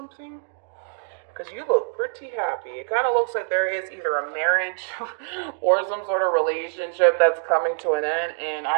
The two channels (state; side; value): silent; left; digital silence